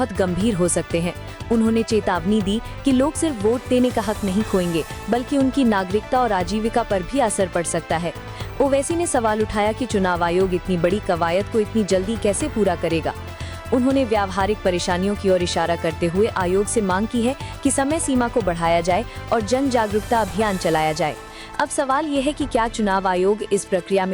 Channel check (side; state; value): both; identical; correlation 1.00